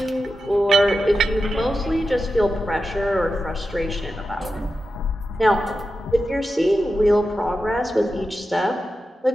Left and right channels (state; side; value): normal; both; correlation 0.91